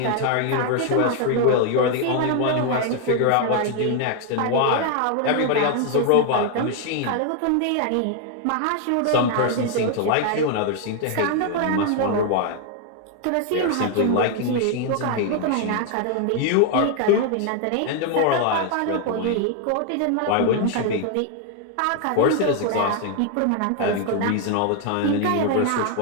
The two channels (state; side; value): different; both; correlation 0.00